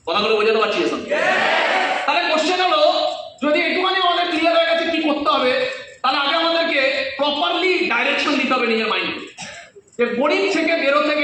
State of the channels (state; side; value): identical; both; correlation 1.00